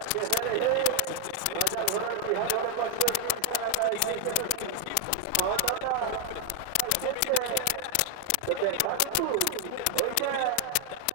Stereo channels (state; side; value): different; both; correlation 0.00